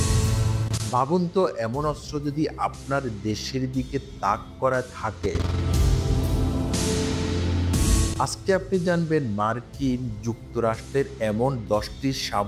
ভাবুন তো, এমন অস্ত্র যদি আপনার দেশের দিকে তাক করা থাকে। আজকে আপনি জানবেন মার্কিন যুক্তরাষ্ট্রের এমন 10টি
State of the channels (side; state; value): both; identical; correlation 1.00